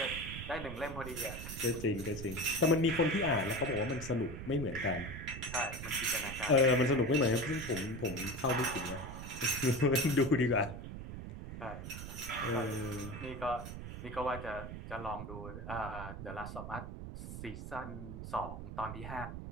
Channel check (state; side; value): noise; right; rumble, 9 dB below the sound